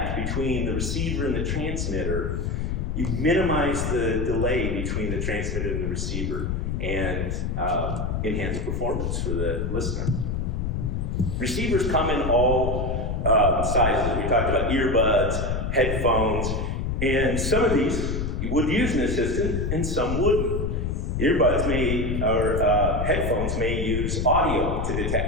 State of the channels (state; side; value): noise; left; rumble, 1 dB below the sound